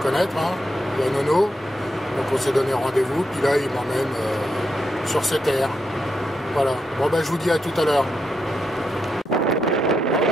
hein, la Nono, donc on s'est donné rendez-vous, puis là il m'emmène sur ces terres. Voilà, bon je vous dis à tout à l'heure.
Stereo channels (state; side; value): normal; both; correlation 0.83